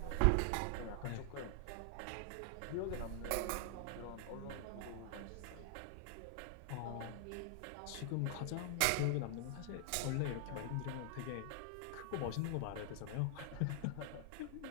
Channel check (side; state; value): both; different; correlation 0.00